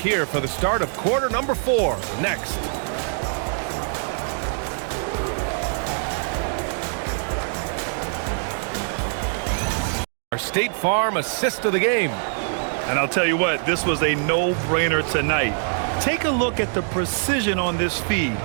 for the start of quarter number 4 next. Our State Farm assist of the game. And I'll tell you what, this was a no-brainer tonight. Take a look at the precision on this feed.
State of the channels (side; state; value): left; silent; 63 dB below the other